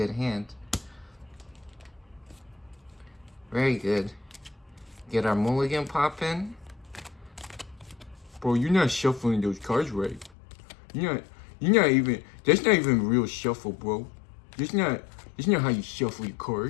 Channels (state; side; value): drops out; right; at 10.4 s